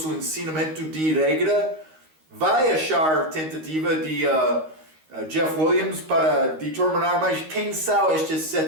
ensinamento de regra. Vai achar tentativa de Jeff Williams para determinar mais quem são estes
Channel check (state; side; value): late; left; 13 ms